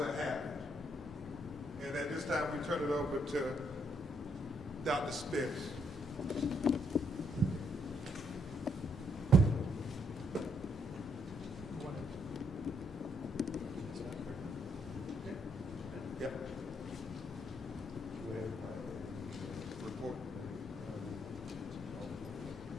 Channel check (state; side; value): normal; both; correlation 0.74